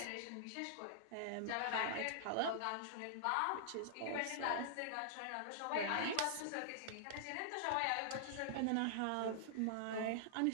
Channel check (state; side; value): different; both; correlation -0.01